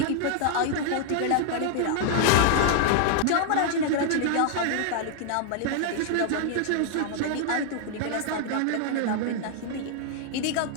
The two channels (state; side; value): different; both; correlation 0.00